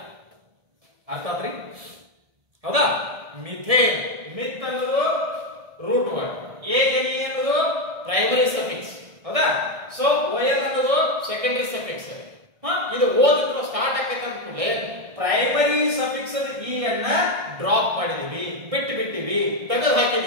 ಅರ್ಥ ಆತ್ರಿ ಹೌದಾ ಮಿಥೇನ್ ಮಿತ್ ಅನ್ನೋದು ರೂಟ್ ವರ್ಡ್ ANE ಅನ್ನೋದು ಪ್ರೈಮರಿ ಸಫಿಕ್ಸ್ ಹೌದಾ ಸೊ OL ಅನ್ನೋದು ಸೆಕೆಂಡರಿ ಸಫಿಕ್ಸ್ ಇದು ಓದಿದ್ರು ಸ್ಟಾರ್ಟ್ ಆಕೈತೆ ಅಂತ ಕೂಡಲೇ ಪ್ರೈಮರಿ ಸಫಿಕ್ಸ್ E ಅನ್ನ ಡ್ರಾಪ್ ಮಾಡಿದೀವಿ ಬಿಟ್ಟಿವಿ ತೆಗೆದು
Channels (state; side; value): late; left; 1.6 ms